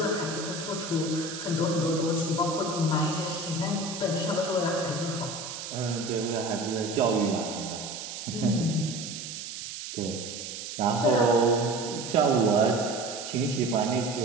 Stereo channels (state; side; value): noise; right; hiss, 8 dB below the sound